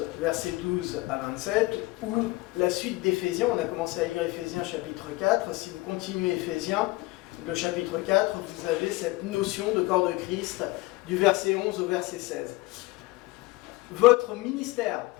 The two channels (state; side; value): quieter; right; 21.2 dB